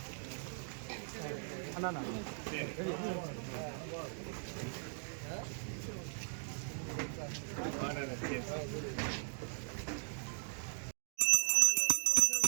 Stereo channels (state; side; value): silent; left; 52 dB below the other